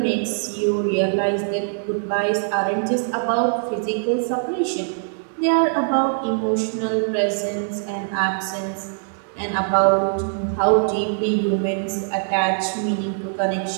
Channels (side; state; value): left; silent; digital silence